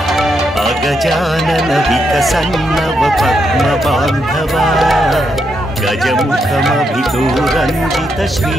गजानन विकसन्नव पद्मबान्धवा गजमुखमभिदूरञ्जित श्री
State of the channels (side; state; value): both; normal; correlation 0.80